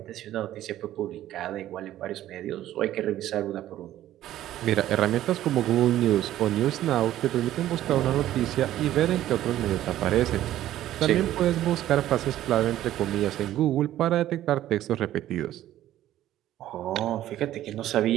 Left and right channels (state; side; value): quieter; left; 13.2 dB